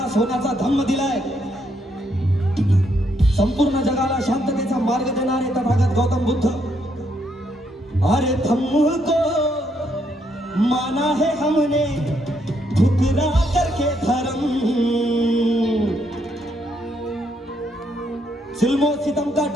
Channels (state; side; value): normal; both; correlation 0.74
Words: सोन्याचा धम्म दिलाय, संपूर्ण जगाला शांततेचा मार्ग देणारे तथागत गौतम बुद्ध। अरे धम्म को माना है हमने ठुकरा करके धर्म, जुल्मो सितम का